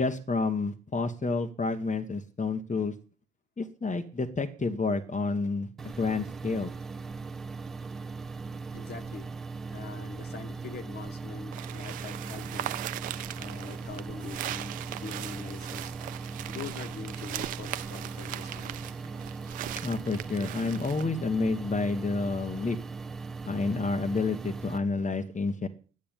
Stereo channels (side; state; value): both; normal; correlation 0.66